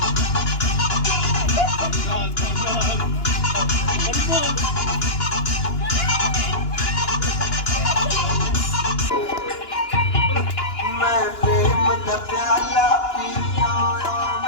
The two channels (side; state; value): right; late; 2.9 ms